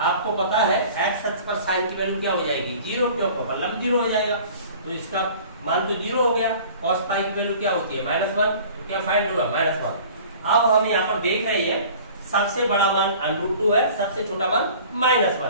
आपको पता है x अक्ष पर sin की वैल्यू क्या हो जाएगी 0, क्यों मतलब 0 हो जाएगा, तो इसका मान तो 0 हो गया। cos पाई की वैल्यू क्या होती है -1, क्या फाइंड हुआ -1। अब हम यहाँ पर देख रहे हैं सबसे बड़ा मान √2 है, सबसे छोटा मान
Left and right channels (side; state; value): both; inverted; correlation -0.46